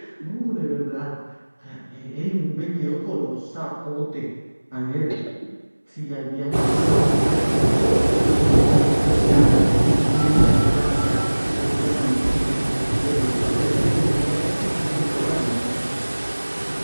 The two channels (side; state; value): both; inverted; correlation -1.00